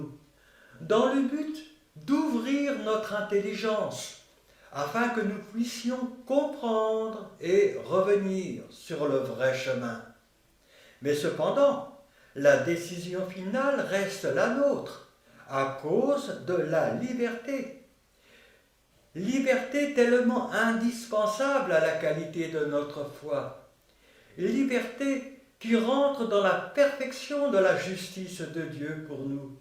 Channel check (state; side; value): identical; both; correlation 1.00